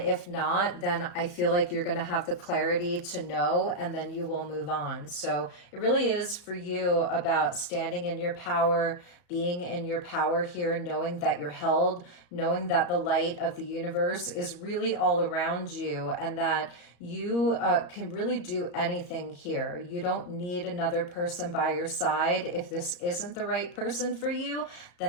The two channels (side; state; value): right; late; 34 ms